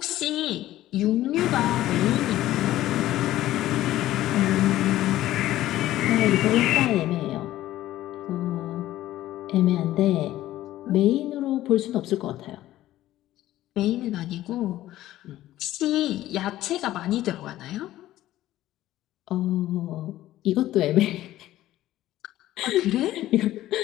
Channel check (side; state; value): right; quieter; 14.5 dB